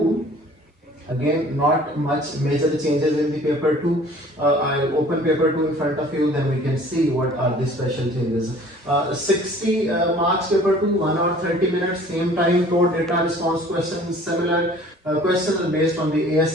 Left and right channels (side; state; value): both; normal; correlation 0.50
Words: Again, not much major changes in the paper 2. I'll open paper 2 in front of you, then we can see what are the special changes. 60 marks paper 2, 1 hour 30 minutes, same time, code data response questions, similar. Questions are based on the